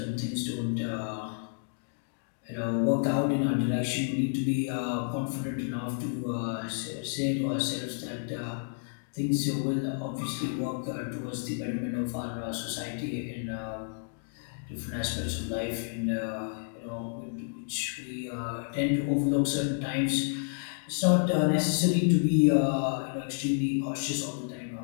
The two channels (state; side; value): silent; right; digital silence